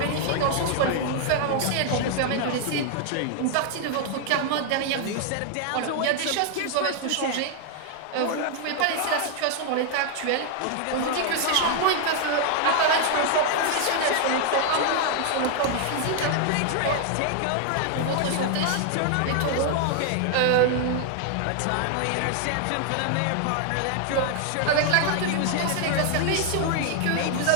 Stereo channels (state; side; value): different; both; correlation 0.00